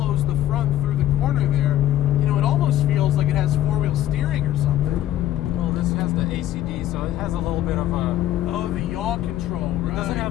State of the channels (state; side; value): quieter; right; 12.7 dB